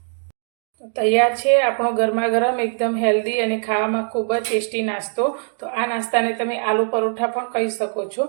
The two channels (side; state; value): left; silent; 59 dB below the other